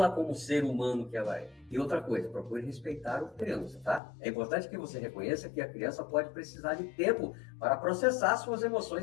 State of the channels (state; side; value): drops out; right; at 4.0 s